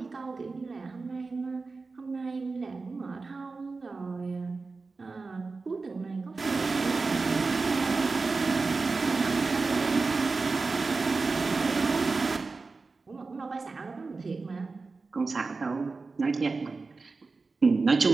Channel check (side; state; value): left; quieter; 4.0 dB